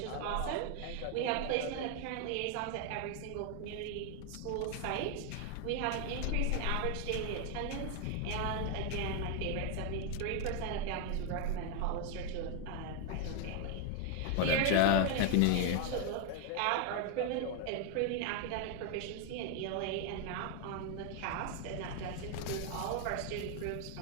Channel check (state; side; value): different; both; correlation 0.00